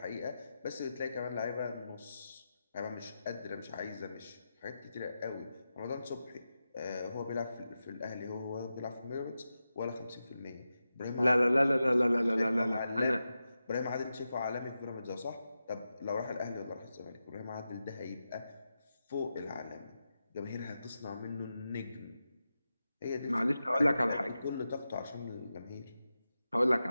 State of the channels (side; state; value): both; inverted; correlation -0.91